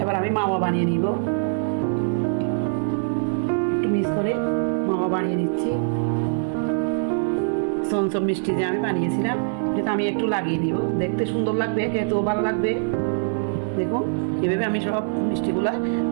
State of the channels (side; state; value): left; silent; digital silence